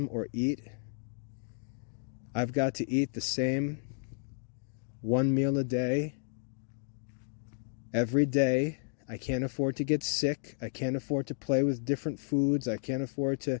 or eat. I've got to eat the same one meal a day, every day. I can't afford to get sick. I can't afford to play with different foods. I can't afford to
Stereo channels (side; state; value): right; silent; digital silence